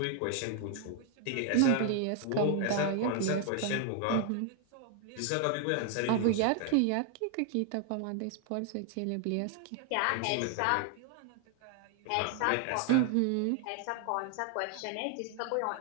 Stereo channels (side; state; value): both; different; correlation 0.00